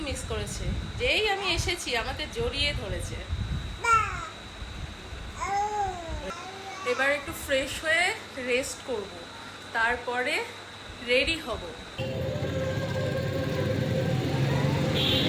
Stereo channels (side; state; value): both; identical; correlation 1.00